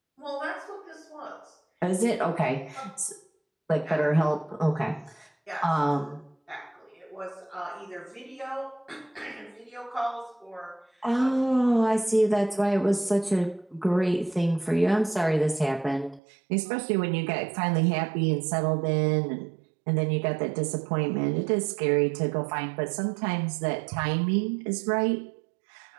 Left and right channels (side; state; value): left; drops out; at 16.2 s